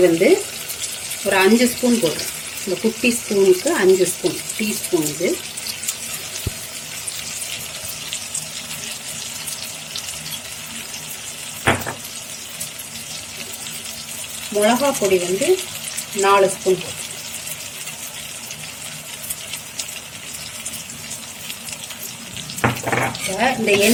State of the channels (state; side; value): identical; both; correlation 1.00